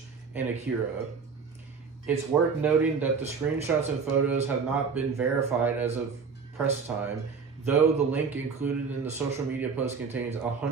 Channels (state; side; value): quieter; left; 5.4 dB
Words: and Akira. It's worth noting that the screenshots and photos have not been verified as of press time, though the link included in the social media post contains